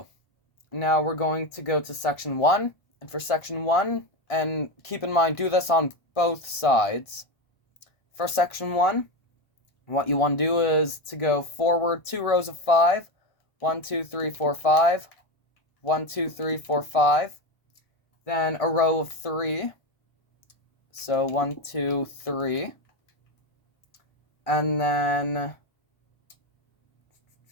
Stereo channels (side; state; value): right; late; 1.5 ms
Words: now we're going to go to section 1, and for section 1, and keep in mind, do this on both sides. For section 1, what you want to do is to go forward 2 rows of 5, 1, 2, 3, 4, 5, 1, 2, 3, 4, 5, then a row of 3, so 1, 2, 3, and then